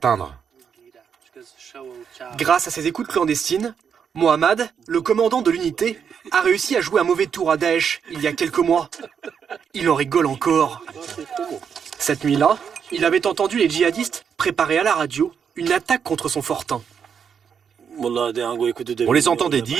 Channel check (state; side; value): quieter; left; 7.2 dB